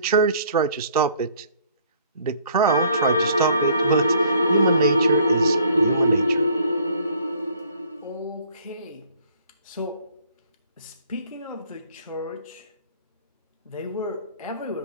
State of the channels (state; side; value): inverted; both; correlation -0.59